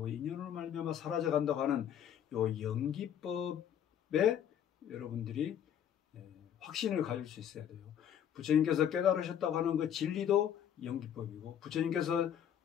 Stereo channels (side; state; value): right; quieter; 9.5 dB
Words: 인연으로 말미암아 사라져간다고 하는 요 연기법에 여러분들이 확신을 가질 수 있어야 돼요. 부처님께서 깨달으셨다고 하는 그 진리도 연기법이고, 부처님께서